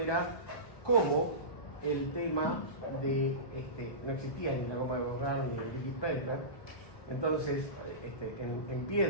cómo el tema de, no existía ni la goma de borrar ni el liquid paper, entonces en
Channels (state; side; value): late; right; 1.2 ms